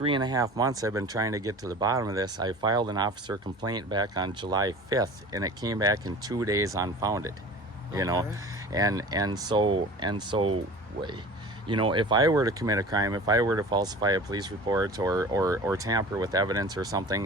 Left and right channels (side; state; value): both; normal; correlation 0.39